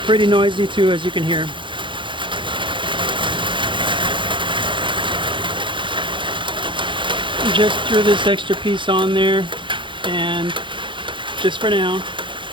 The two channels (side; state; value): left; late; 0.24 ms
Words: Pretty noisy too, as you can hear. Just threw this extra piece on there, and just for now,